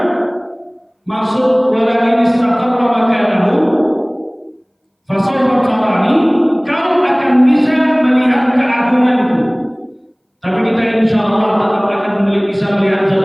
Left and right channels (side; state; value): both; identical; correlation 1.00